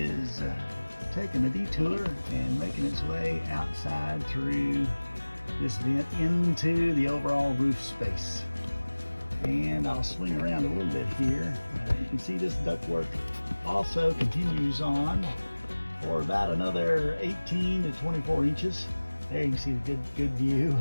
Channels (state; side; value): inverted; both; correlation -1.00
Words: taking a detour and making its way outside through this vent into the overall roof space. And I'll swing around a little bit here. You can see this ductwork also continues on for about another 18 to 24 inches. There you can see the good view